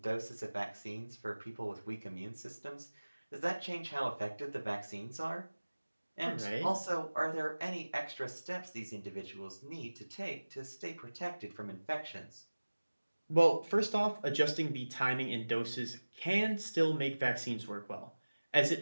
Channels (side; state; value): both; inverted; correlation -1.00